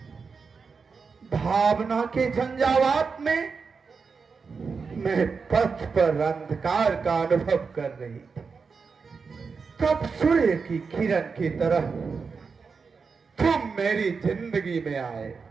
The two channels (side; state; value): left; quieter; 5.1 dB